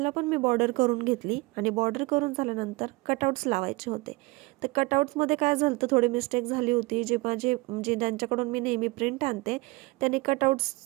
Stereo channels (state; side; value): quieter; left; 24.1 dB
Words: पण मी बॉर्डर करून घेतली आणि बॉर्डर करून झाल्यानंतर कटआउट्स लावायचे होते. तर कटआउट्समध्ये काय झालं तर थोडी मिस्टेक झाली होती. जे ज्यांच्याकडून मी नेहमी प्रिंट आणते त्यांनी